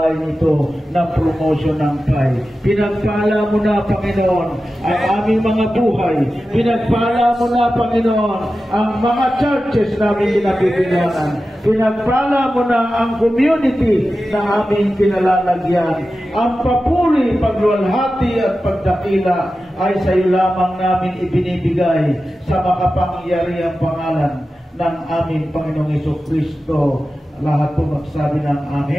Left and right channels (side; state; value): both; normal; correlation 0.93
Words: ito ng promotion ng Pi. Pinagpala mo na, Panginoon, ang aming mga buhay. Pinagpala mo na, Panginoon, ang mga churches namin pinapipilanan. Pinagpala mo na ang community na aming pinalalagyan. Ang papuri, pagluwalhati at pagdakila ay sa iyo lamang namin ibinibigay sa makapangyarihang pangalan ng aming Panginoong Jesucristo. Lahat po magsabi ng